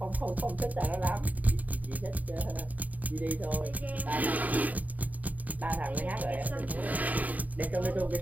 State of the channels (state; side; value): late; left; 0.076 ms